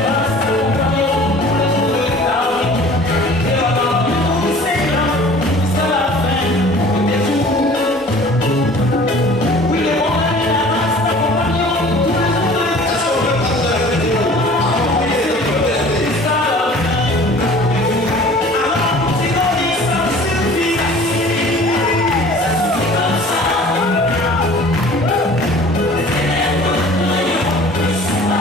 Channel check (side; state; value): both; normal; correlation 0.47